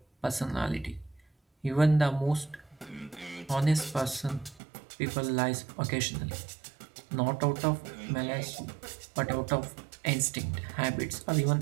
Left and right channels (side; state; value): left; drops out; at 4.6 s